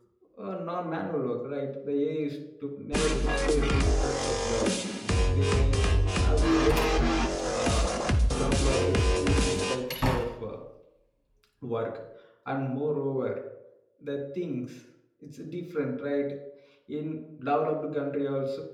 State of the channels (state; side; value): identical; both; correlation 1.00